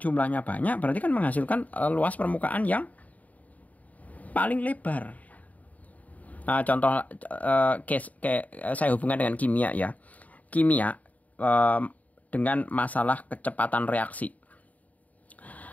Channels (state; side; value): late; right; 0.072 ms